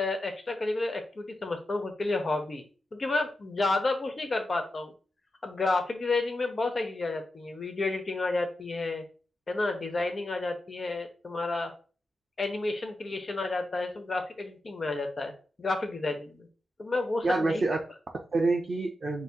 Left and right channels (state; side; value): normal; both; correlation 0.89